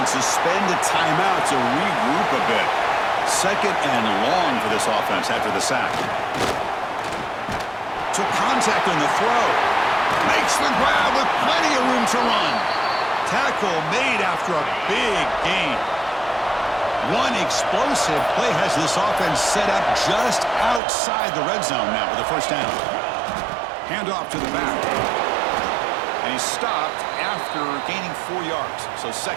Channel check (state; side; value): drops out; left; at 20.8 s